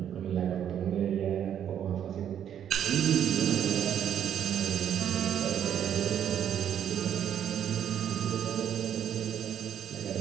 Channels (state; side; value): quieter; left; 9.5 dB